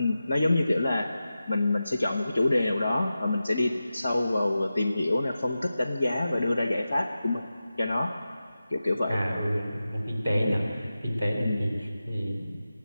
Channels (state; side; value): inverted; both; correlation -0.93